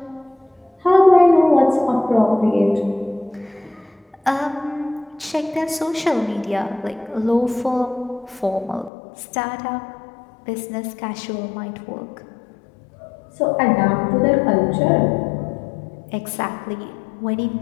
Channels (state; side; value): drops out; right; at 8.9 s